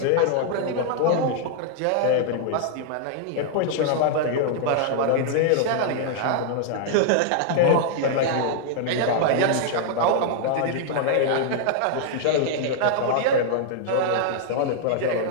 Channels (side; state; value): both; different; correlation -0.01